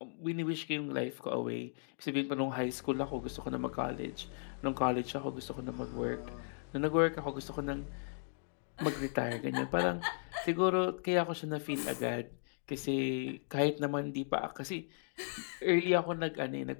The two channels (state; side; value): silent; right; digital silence